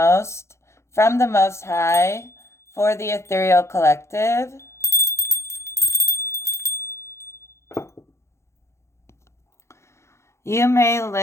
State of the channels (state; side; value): late; right; 0.13 ms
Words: from the Most High for the ethereal collective? You may